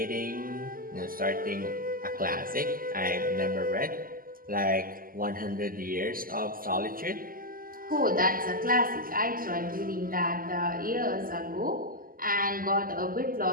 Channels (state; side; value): late; left; 0.42 ms